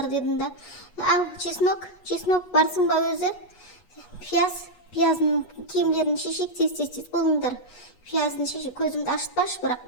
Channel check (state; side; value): late; right; 8.3 ms